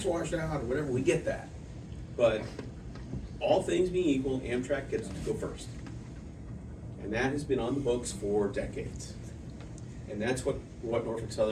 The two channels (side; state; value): both; identical; correlation 1.00